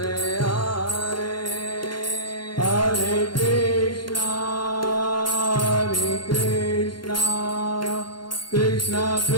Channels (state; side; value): late; right; 0.72 ms